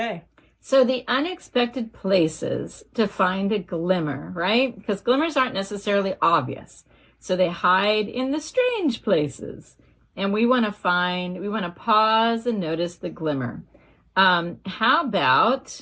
So the unexpected places to find a glimmer, right? Because glimmers aren't necessarily obvious. So they hide in the strange places. And we want to pause and notice the glimmer. How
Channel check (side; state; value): both; identical; correlation 1.00